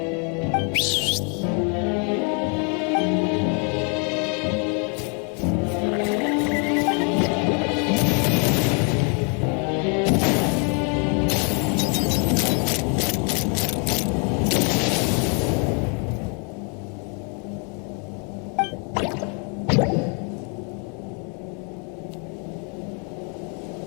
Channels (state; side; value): quieter; right; 36.8 dB